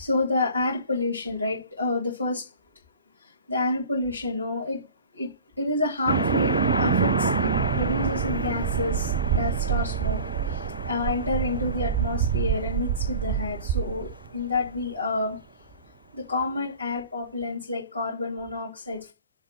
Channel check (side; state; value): both; inverted; correlation -0.42